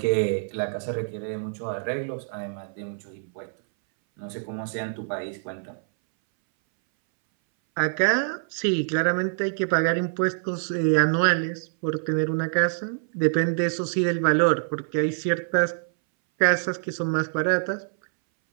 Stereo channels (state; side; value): silent; left; 61 dB below the other